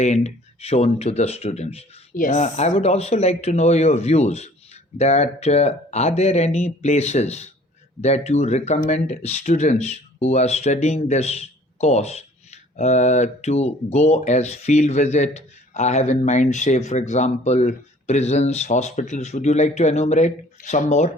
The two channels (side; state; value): both; normal; correlation 0.53